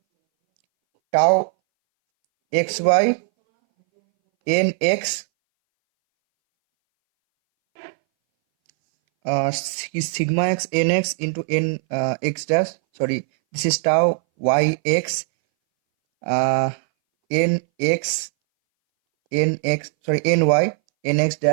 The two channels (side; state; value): left; silent; 62 dB below the other